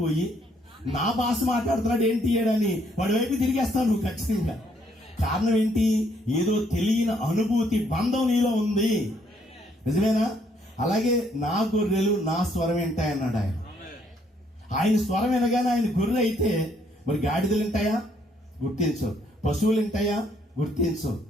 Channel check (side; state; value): both; normal; correlation 0.69